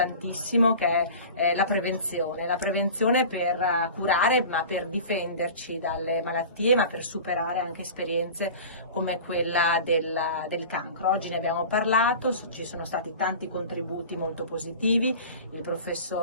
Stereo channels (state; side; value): inverted; both; correlation -0.37